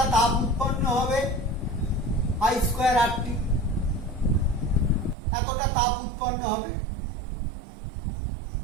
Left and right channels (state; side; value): drops out; left; at 5.2 s